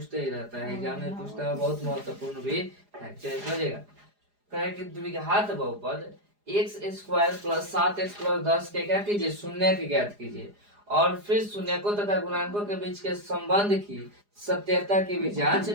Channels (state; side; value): late; left; 4.9 ms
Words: ही रहता है, एग्जाम में पूछता है, बहुत महत्वपूर्ण भी है। चलिए समझेगा। कहे कि द्विघात बहुपद x square plus 7x plus 10 के क्या कीजिए, शून्य के ज्ञात कीजिए, और फिर शून्यकों तथा गुणांकों के बीच के संबंध की सत्यता की भी जांच